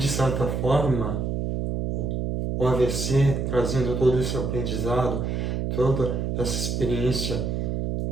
certa forma, o AVC trazendo todo esse aprendizado, toda essa experiência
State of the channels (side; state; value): right; noise; hum, 1 dB below the sound